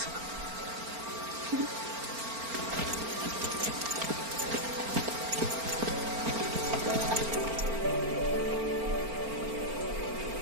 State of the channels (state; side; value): late; left; 4.4 ms